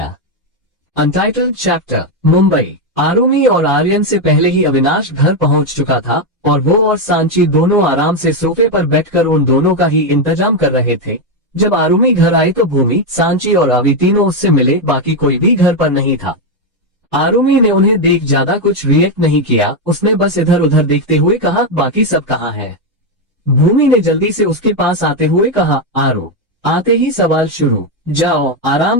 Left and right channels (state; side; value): normal; both; correlation 0.05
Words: Untitled chapter, Mumbai. आरुमि और आर्यन से पहले ही अविनाश घर पहुंच चुका था, और वो और सांची दोनों आराम से सोफे पर बैठकर उन दोनों का ही इंतजाम कर रहे थे। जब आरुमि घर आई तो भूमि, सांची और अवि तीनों उससे मिले, बाकी कोई भी घर पर नहीं था। आरुमि ने उन्हें देख ज्यादा कुछ रिएक्ट नहीं किया। उसने बस इधर उधर देखते हुए कहा, बाकी सब कहाँ है। भूमि ने जल्दी से उसके पास आते हुए कहा, आरो। आते ही सवाल शुरू, जाओ